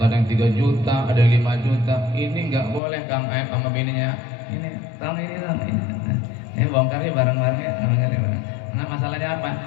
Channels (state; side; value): drops out; right; at 2.8 s